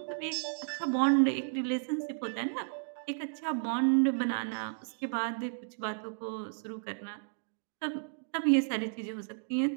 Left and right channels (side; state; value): left; silent; digital silence